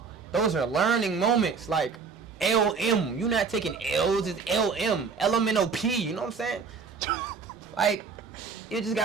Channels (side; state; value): left; quieter; 5.3 dB